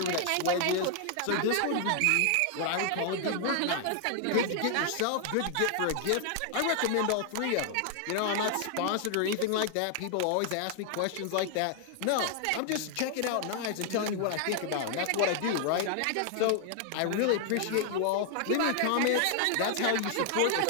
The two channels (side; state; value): both; different; correlation 0.00